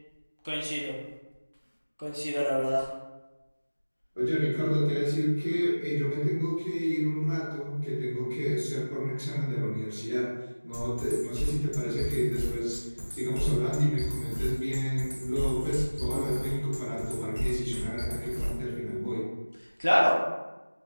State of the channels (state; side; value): inverted; both; correlation -1.00